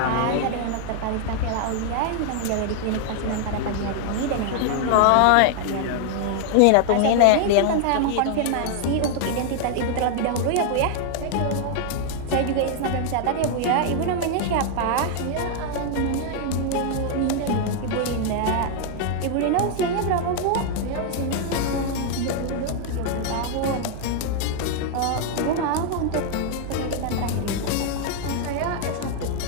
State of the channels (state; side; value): different; both; correlation 0.00